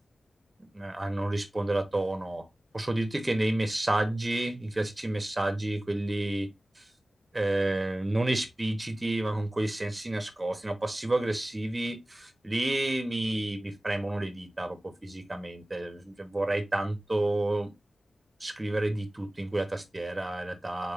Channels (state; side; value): normal; both; correlation 0.98